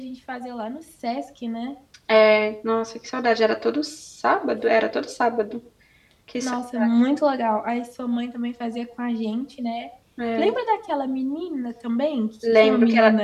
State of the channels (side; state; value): both; identical; correlation 1.00